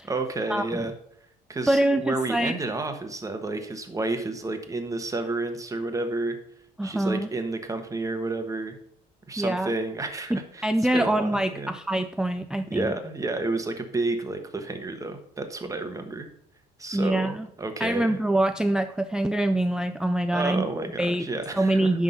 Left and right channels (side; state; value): both; normal; correlation 0.84